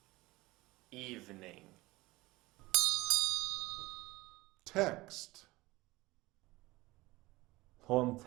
Evening. Text. Poem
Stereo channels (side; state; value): left; quieter; 20.3 dB